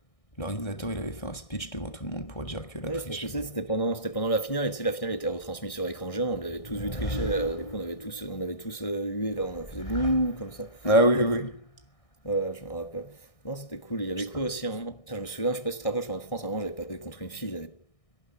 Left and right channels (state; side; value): late; right; 1.6 ms